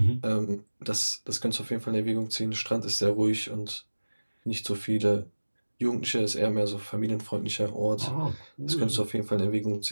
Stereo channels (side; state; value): both; inverted; correlation -1.00